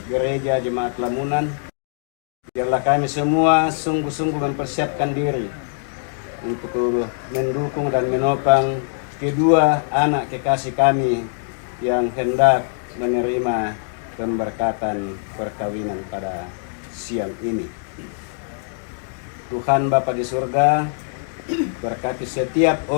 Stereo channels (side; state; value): right; silent; digital silence